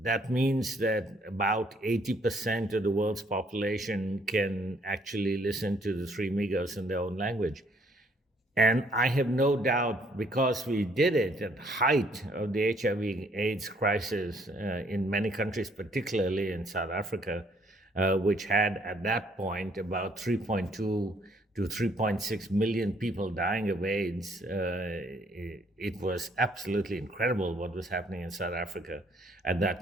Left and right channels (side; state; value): both; normal; correlation 0.65